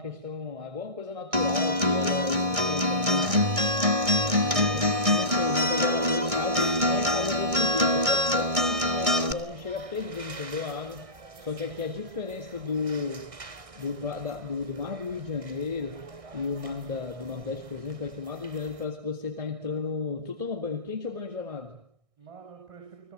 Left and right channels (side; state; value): left; late; 1.6 ms